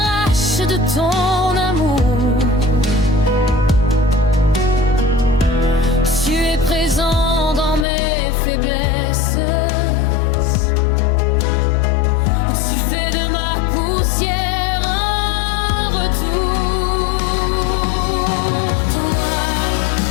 de ton amour. Tu es présent dans mes faiblesses. Tu fais de ma poussière un retour. Toi,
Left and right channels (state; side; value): drops out; right; at 7.9 s